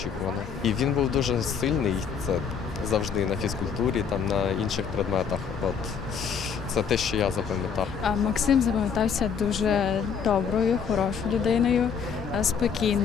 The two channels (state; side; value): quieter; right; 6.8 dB